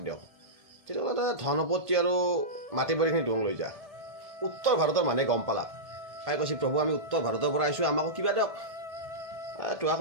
দিয়ক তেতিয়াহ'লে ধন সম্পত্তি আৰু মাটি বাৰীখিনি দোং লৈ যা উত্তৰ ভাৰতৰ মানুহে গম পালাক পাই কৈছে প্ৰভু আমি উত্তৰ ভাৰতৰ পৰা আহিছোঁ আমাকো কিবা দিয়ক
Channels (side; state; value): left; late; 1.7 ms